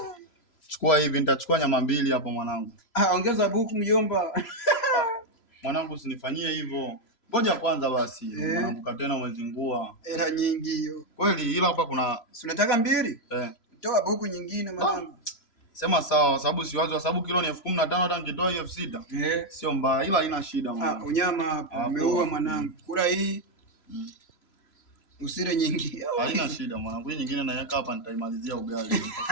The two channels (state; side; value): late; right; 3.0 ms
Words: Chukua hivi, nitachukua nyama 2 hapo mwanangu. Ongeza buku mjomba. Mwanangu usinifanyie hivyo. Ngoja kwanza basi. Mwanangu katena umezingua. Hela nyingi hiyo. Kweli, ila hapa kuna si unataka 2? Toa buku nyingine mwanangu. Sema sawa, sababu siwazi, kwa sababu kilo ni 15,000 hata nikitoa hiyo 6. Sio mbaya, ila haina shida mwanangu. Unyama hapa umeua mwanangu. Kula hii. Usile nyingi. Haina shida mwanangu. Hii nyingine naweka hapa, nitaimalizia ugali.